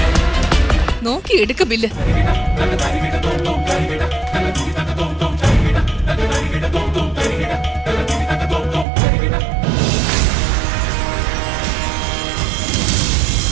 നോക്കി എടുക്ക ബില്ല്.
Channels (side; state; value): left; drops out; at 8.8 s